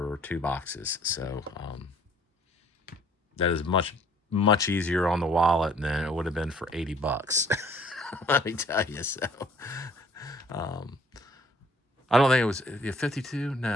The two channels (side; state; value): both; normal; correlation 0.58